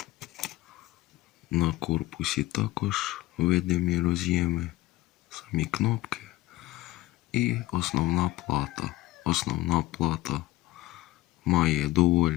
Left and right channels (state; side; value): quieter; right; 17.6 dB